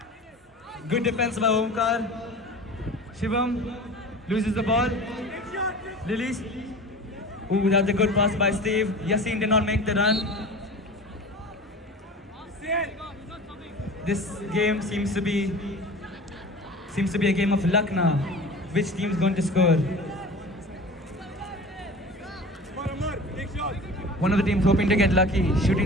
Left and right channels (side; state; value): both; normal; correlation 0.38